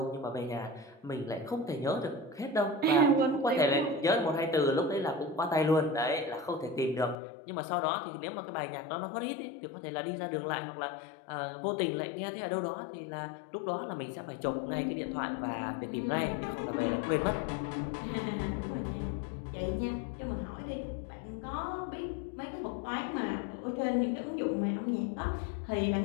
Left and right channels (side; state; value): right; drops out; at 7.2 s